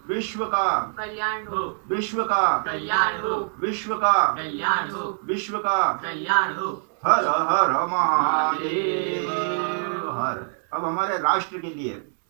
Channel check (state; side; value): silent; left; digital silence